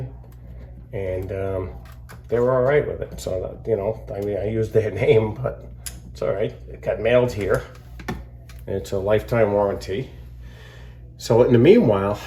and they were all right with it. So that, you know, I mean, I used their name, but it's all right. It got mailed here, and it's a lifetime warranty. So in the meanwhile,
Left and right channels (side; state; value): both; identical; correlation 1.00